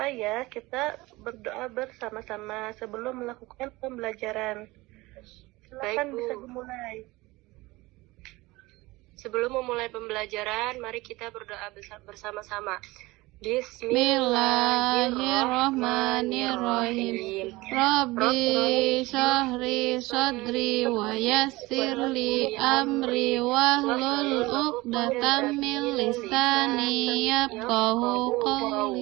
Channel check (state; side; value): quieter; left; 21.0 dB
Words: ya, kita berdoa bersama-sama sebelum melakukan pembelajaran. Silakan Baik, Bu. bisa dimulai. Sebelum memulai pembelajaran, mari kita berdoa bersama-sama. Bismillahirrahmanirrahim. Rabbi syahri sadri wa yassirli amri wahlul uqdatam min lisani yafqahu